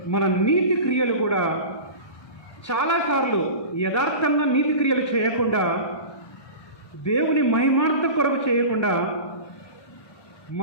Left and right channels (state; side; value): late; right; 1.2 ms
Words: మన నీతి క్రియలు కూడా చాలాసార్లు యథార్థంగా నీతి క్రియలు చేయకుండా దేవుని మహిమార్థం కొరకు చేయకుండా